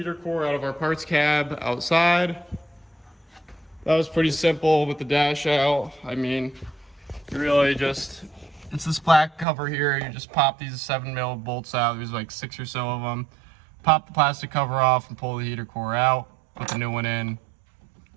core out of our parts cab outside. That was pretty simple with the dash out. I mean, you really just, it's this black cover here. You just pop these 7mm bolts out. There's like 6 or so of them. Pop the plastic cover off and pull the heater core out. Put the new one in.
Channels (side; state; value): left; drops out; at 9.5 s